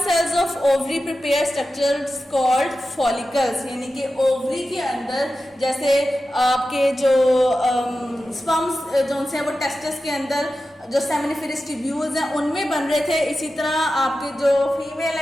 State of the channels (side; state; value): both; normal; correlation 0.93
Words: cells of ovary prepare structures called follicles, यानी कि ओवरी के अंदर जैसे आपके जो स्पर्म्स जो से वो टेस्टिस के अंदर जो सेमिनिफेरस ट्यूब्यूल्स हैं उनमें बन रहे थे, इसी तरह आपके जो फीमेल